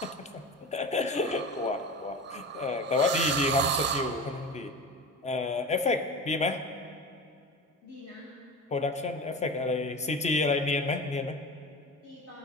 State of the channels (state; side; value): normal; both; correlation 0.30